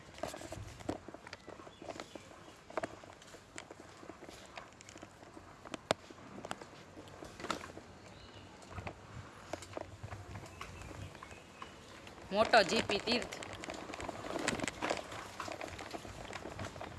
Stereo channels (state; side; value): identical; both; correlation 1.00